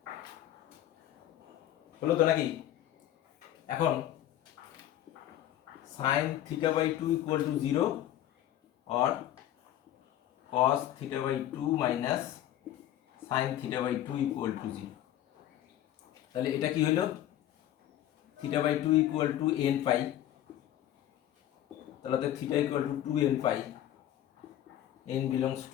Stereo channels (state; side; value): quieter; right; 12.4 dB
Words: হলো তো নাকি? এখন sine theta by 2 equal to 0 और cos theta by 2 minus sine theta by 2 equal to 0। তাহলে এটা কি হলো? Theta by 2 equal to n pi, তাহলে theta equal to 2n pi, n belongs